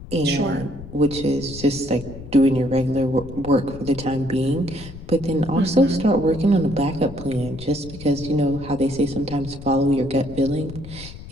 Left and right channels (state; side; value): noise; left; rumble, 14 dB below the sound